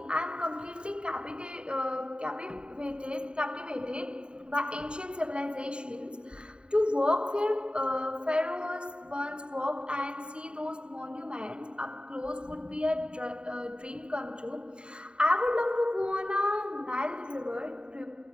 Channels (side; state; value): left; late; 0.051 ms